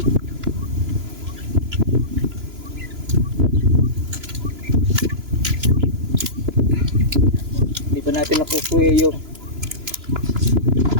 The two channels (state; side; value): late; left; 3.0 ms